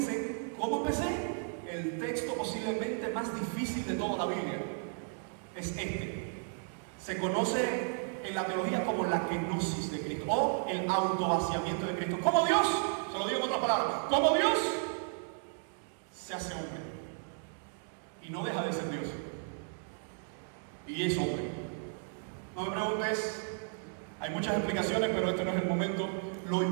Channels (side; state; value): left; silent; 55 dB below the other